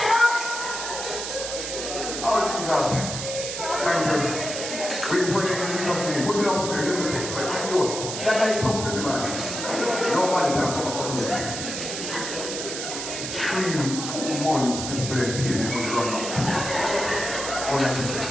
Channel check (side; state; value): right; noise; hiss, 5 dB below the sound